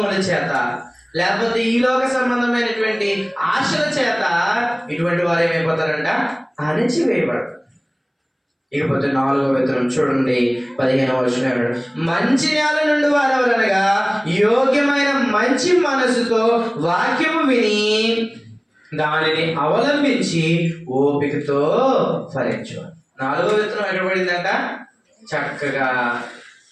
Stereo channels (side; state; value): both; identical; correlation 1.00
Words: చేత, లేకపోతే ఈ లోక సంబంధమైనటువంటి ఆశల చేత ఇటువంటి వారు ఏమైపోతారంట, అణిచివేయబడతారు. ఇకపోతే 4వ విత్తనం చూడండి 15వ వచనం, మంచి నేల నుండి వారెవరనగా యోగ్యమైన మంచి మనసుతో వాక్యము విని దానిని అవలంబించి ఓపికతో ఫలించేవారు. 4వ విత్తనం ఎక్కడ పడిందంట, చక్కగా